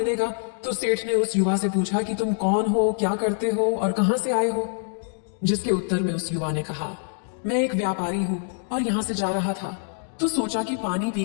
तो सेठ ने उस युवा से पूछा कि तुम कौन हो, क्या करते हो और कहां से आए हो? जिसके उत्तर में उस युवा ने कहा, मैं एक व्यापारी हूं और यहां से जा रहा था, तो सोचा कि पानी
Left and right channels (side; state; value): right; silent; 62 dB below the other